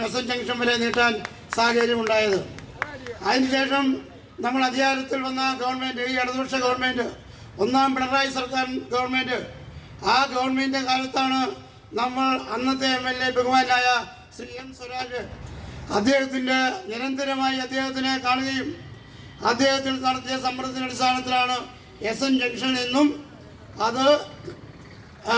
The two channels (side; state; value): both; identical; correlation 1.00